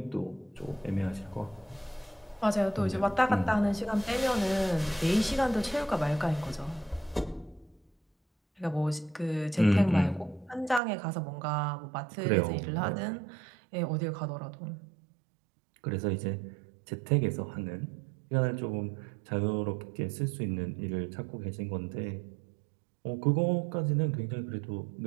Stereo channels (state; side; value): drops out; left; at 10.8 s